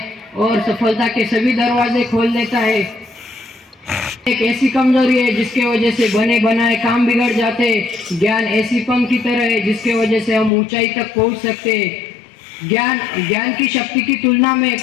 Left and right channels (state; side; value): drops out; right; at 10.5 s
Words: और सफलता के सभी दरवाजे खोल देता है। एक ऐसी कमजोरी है जिसके वजह से बने बनाए काम बिगड़ जाते हैं। ज्ञान ऐसी पंख की तरह है जिसके वजह से हम ऊंचाई तक पहुंच सकते हैं। ज्ञान की शक्ति की तुलना